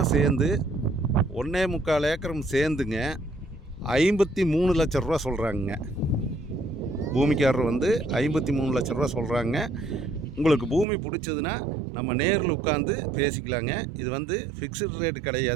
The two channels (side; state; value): left; drops out; at 10.9 s